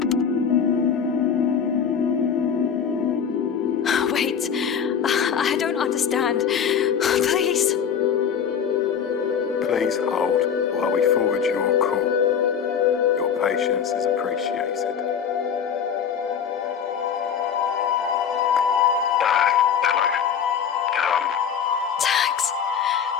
Wait, I don't understand. Please. Please hold while we forward your call. Your patience is appreciated. Hello.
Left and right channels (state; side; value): quieter; right; 7.6 dB